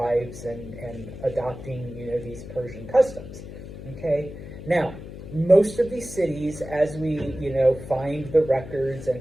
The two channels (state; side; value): noise; left; hum, 12 dB below the sound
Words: and adopting, these Persian customs, okay? Now, most of these cities, as we, find the records and